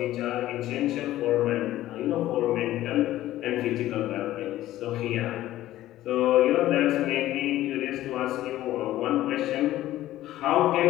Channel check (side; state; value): right; quieter; 14.6 dB